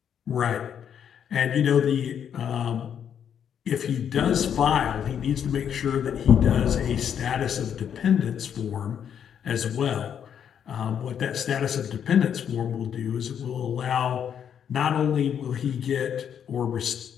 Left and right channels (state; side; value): quieter; right; 8.5 dB